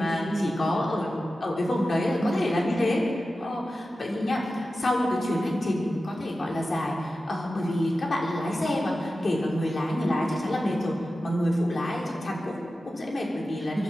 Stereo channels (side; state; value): both; normal; correlation 0.94